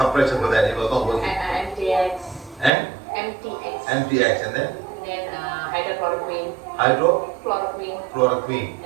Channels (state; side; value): drops out; left; at 2.7 s